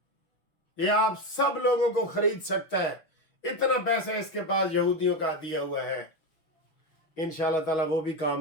یہ آپ سب لوگوں کو خرید سکتا ہے، اتنا پیسہ اس کے پاس یہودیوں کا دیا ہوا ہے۔ انشاءاللہ تعالیٰ وہ بھی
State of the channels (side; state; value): right; late; 6.3 ms